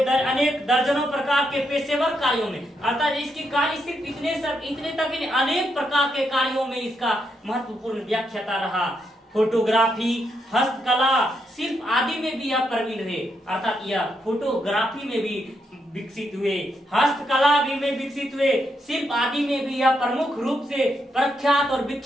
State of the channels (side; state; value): both; normal; correlation 0.80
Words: अनेक दर्जनों प्रकार के पेशेवर कार्यों में, अर्थात इसकी कार्य सिर्फ इतने तक नहीं, अनेक प्रकार के कार्यों में इसका महत्वपूर्ण व्याख्याता रहा। फोटोग्राफी, हस्तकला, शिल्प आदि में भी यह प्रवीण रहे, अर्थात यह फोटोग्राफी में भी विकसित हुए, हस्तकला भी में विकसित हुए, शिल्प आदि में भी यह प्रमुख रूप से प्रख्यात और